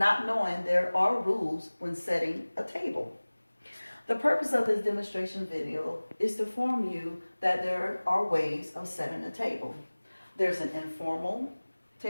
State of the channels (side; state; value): both; inverted; correlation -1.00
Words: knowing there are rules when setting a table. The purpose of this demonstration video is to inform you that there are ways of setting a table. There's an informal